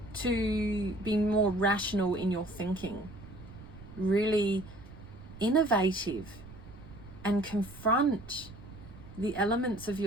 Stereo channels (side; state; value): right; noise; rumble, 17 dB below the sound